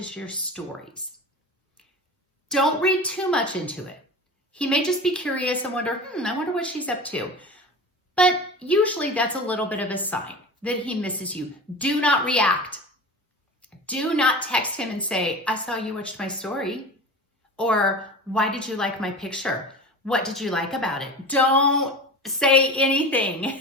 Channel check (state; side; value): normal; both; correlation 0.33